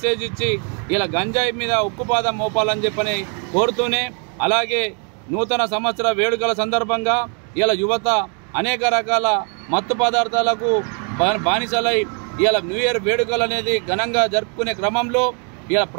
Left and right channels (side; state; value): left; quieter; 39.4 dB